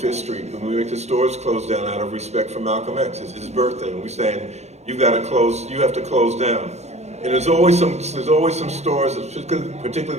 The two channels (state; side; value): late; left; 0.32 ms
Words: Street, and we make the stores close down out of respect for Malcolm X. It's his birthday, and we're saying, you have to close down. And there's always some stores,